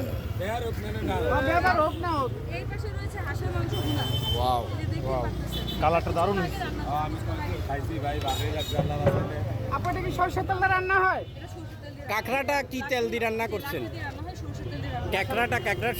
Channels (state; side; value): identical; both; correlation 1.00